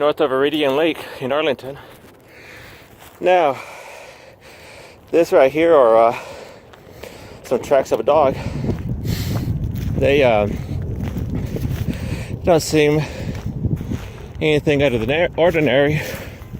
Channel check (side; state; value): both; identical; correlation 1.00